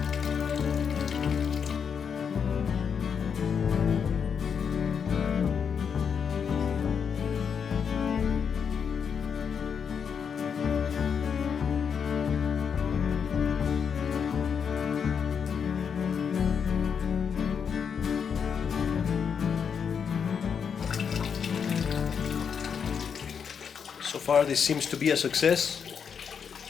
So far this seems to be a success.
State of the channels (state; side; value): quieter; right; 6.9 dB